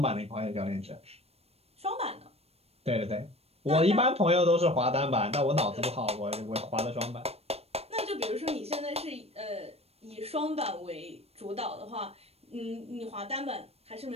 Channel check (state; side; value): late; left; 0.29 ms